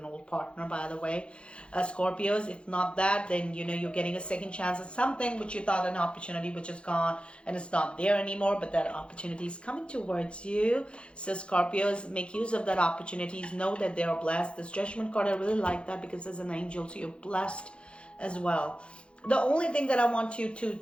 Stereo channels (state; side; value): late; right; 0.058 ms